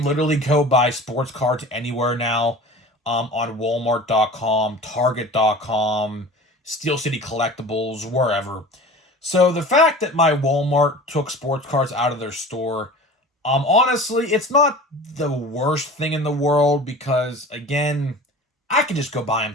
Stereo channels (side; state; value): both; normal; correlation 0.39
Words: literally go buy sports cards anywhere now, on Walmart.com, Target.com, Steel City Collectibles, wherever. So the fact that my Walmart took sports cards out of their store, honestly, it's not the worst thing in the world because, again, I could just go buy them